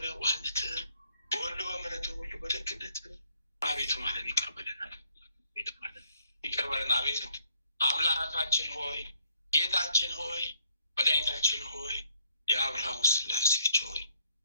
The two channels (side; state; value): both; inverted; correlation -0.66